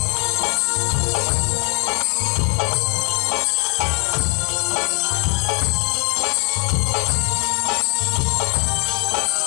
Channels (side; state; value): right; quieter; 31.0 dB